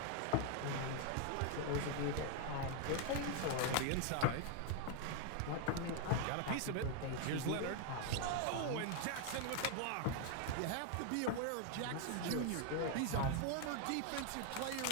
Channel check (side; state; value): both; different; correlation 0.00